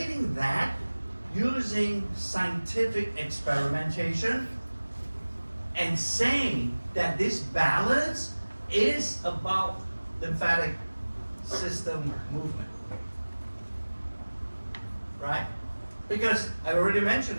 that using scientific experimentation and saying that this balance is about lymphatic system movement. Right? Because I already mentioned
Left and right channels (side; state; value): both; inverted; correlation -1.00